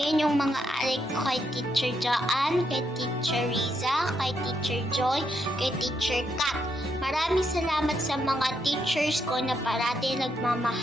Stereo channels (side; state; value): both; normal; correlation 0.78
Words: yung mga arik ko kay Teacher Joanne, kay Teacher Riza, kay Teacher Joy, kay Teacher Kat. Maraming salamat sa mga teachers ko na parati